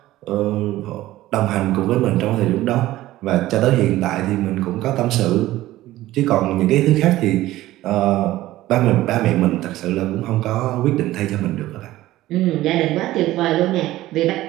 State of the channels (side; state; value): left; quieter; 15.8 dB